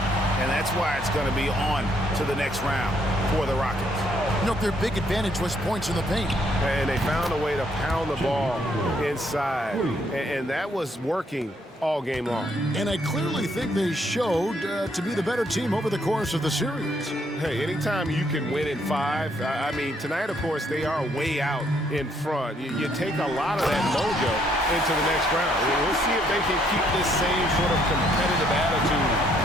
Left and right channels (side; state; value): both; normal; correlation 0.70